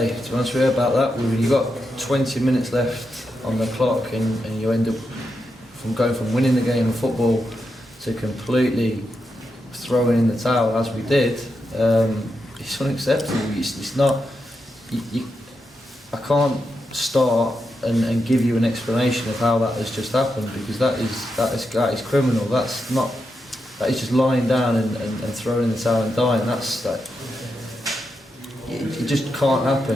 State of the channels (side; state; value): both; normal; correlation 0.86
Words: to be honest with you, about that. You've got 20 minutes left on the clock and you end up going from winning the game of football to completely throwing in the towel, as we did. It's unacceptable. It's not... I can't start and give you an explanation of how that has just happened, because that is criminal. That is just lying down and throwing in the towel and dying. It just can't